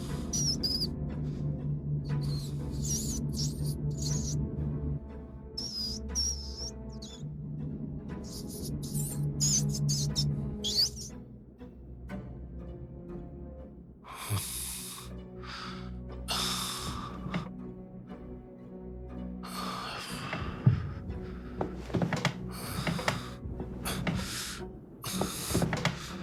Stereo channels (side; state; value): both; identical; correlation 1.00